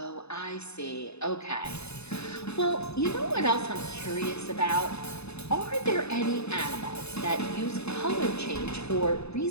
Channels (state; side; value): late; right; 0.80 ms